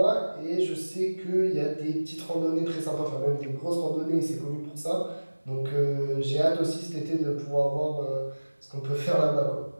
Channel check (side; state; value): both; inverted; correlation -1.00